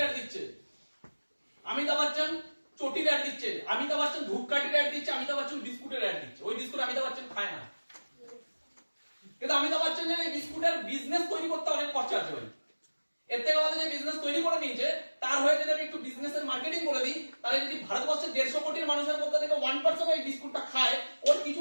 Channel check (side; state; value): both; inverted; correlation -1.00